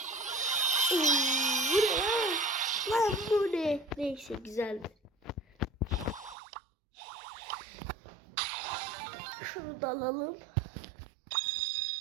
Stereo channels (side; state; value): left; drops out; at 6.4 s